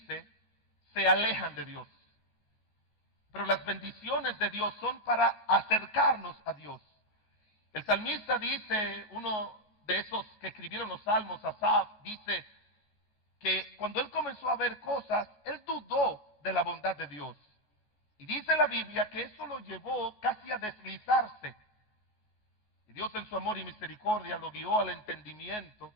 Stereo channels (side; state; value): right; late; 14 ms